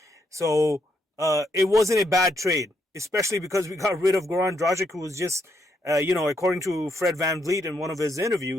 So it wasn't a bad trade, especially because we got rid of Goran Dragic, who was just, according to Fred VanVleet in one of his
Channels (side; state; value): both; normal; correlation 0.77